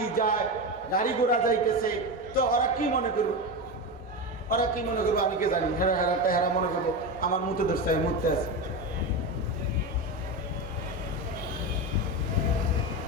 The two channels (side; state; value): both; normal; correlation 0.19